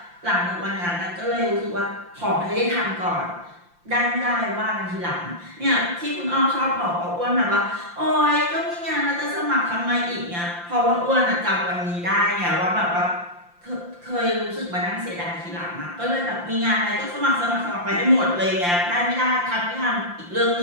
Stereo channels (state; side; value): late; left; 5.8 ms